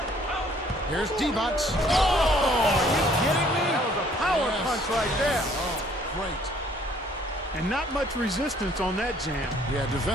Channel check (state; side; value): normal; both; correlation 0.60